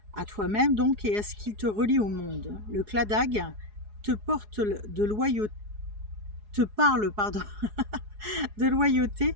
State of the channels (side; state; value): left; late; 4.8 ms